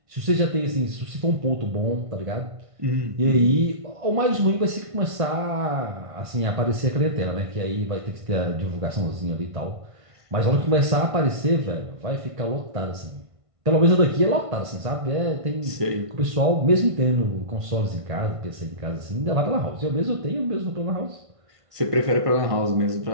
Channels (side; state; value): left; late; 1.5 ms